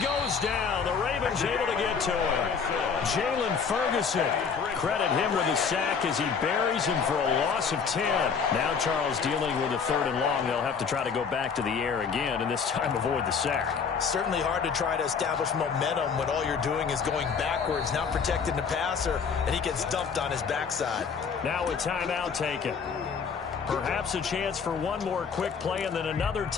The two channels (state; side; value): quieter; right; 6.0 dB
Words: goes down. The Ravens able to get to him. Jalen Ferguson. Credit him with a sack as he buries him for a loss of 10. Now Charles dealing with a 3rd and long. They'll have to try to go back to the air again, and this time avoid the sack. Certainly hard to try to establish momentum when all you're doing is going backwards, not protecting the passer, and he gets dumped on his backside. Now a timeout taken. Perhaps a chance for one more quick play and then another